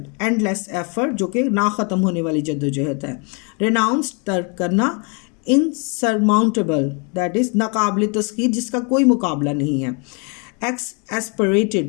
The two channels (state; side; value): quieter; right; 34.7 dB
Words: endless effort, जो कि ना ख़त्म होने वाली जद्दोजहद है. रिनाउंस, तर्क करना. इनसरमाउंटेबल, दैट इज़ नाकाबिल तस्खीर, जिसका कोई मुकाबला नहीं है.